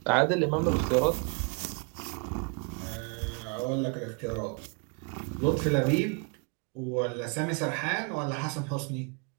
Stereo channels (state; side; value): quieter; left; 34.5 dB